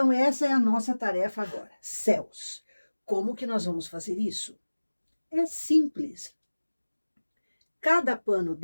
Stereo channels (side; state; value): both; inverted; correlation -1.00